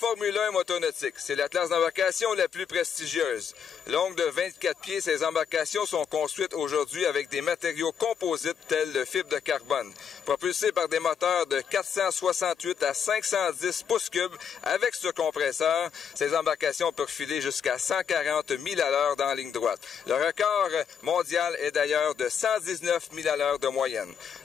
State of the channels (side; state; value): right; quieter; 7.4 dB